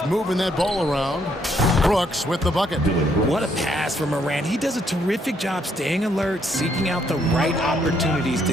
moving that ball around. Brooks with the bucket. What a pass from Morant. He does a terrific job staying alert, seeking out the right opportunities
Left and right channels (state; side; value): normal; both; correlation 0.71